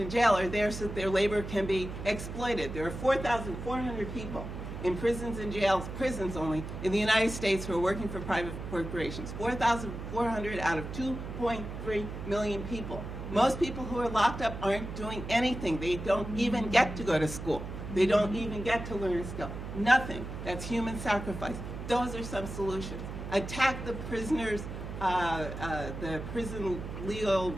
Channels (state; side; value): noise; right; hum, 8 dB below the sound